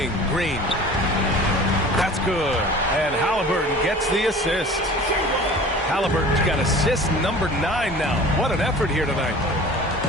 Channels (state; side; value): normal; both; correlation 0.42